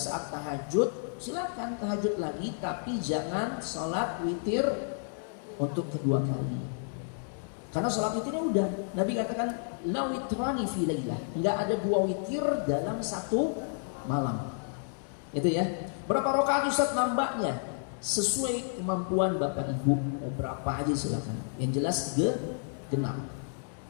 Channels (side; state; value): right; silent; digital silence